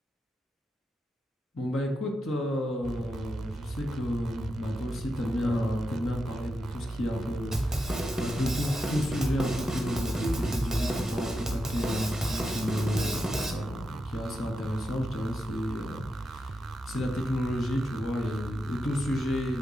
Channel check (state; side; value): normal; both; correlation 0.87